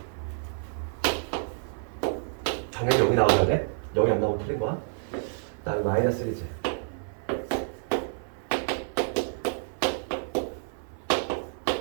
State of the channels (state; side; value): silent; left; 56 dB below the other